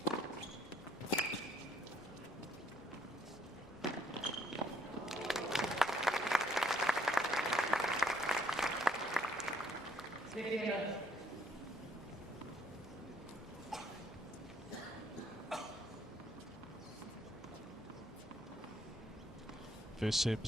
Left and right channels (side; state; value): both; normal; correlation 0.67